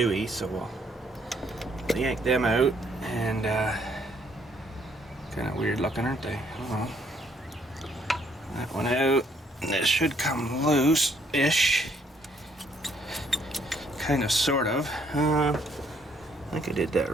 so we'll yank them out, and kind of weird looking, aren't they? Oh. That one out, and this should come loose-ish. Kind of, sort of. I think I did that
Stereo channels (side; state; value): both; normal; correlation 0.67